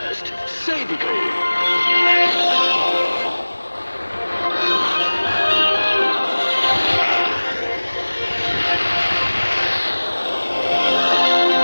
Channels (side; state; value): both; inverted; correlation -1.00